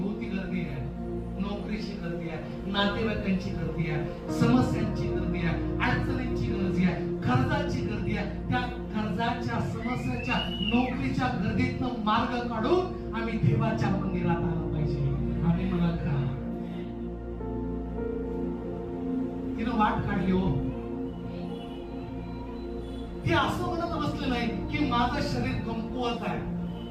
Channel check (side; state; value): both; identical; correlation 1.00